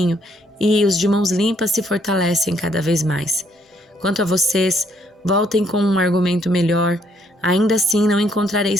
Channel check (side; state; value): both; normal; correlation 0.69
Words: e os de mãos limpas se fortalecem cada vez mais. Quanto a vocês, voltem com um argumento melhor. Ainda assim não encontrarei